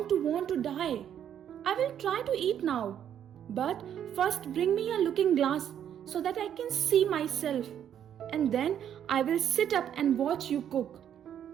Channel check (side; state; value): left; quieter; 9.6 dB